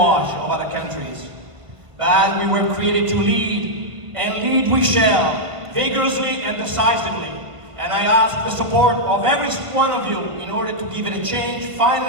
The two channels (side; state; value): left; late; 1.3 ms